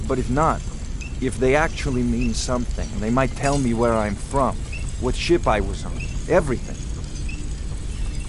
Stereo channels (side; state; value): both; identical; correlation 1.00